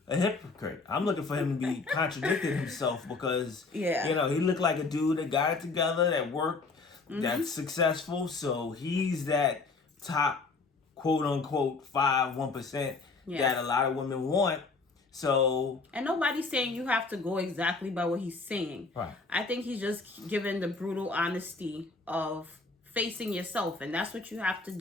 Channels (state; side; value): quieter; right; 4.0 dB